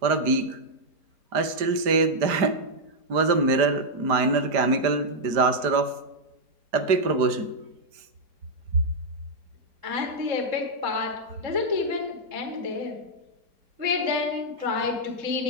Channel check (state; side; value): late; left; 4.9 ms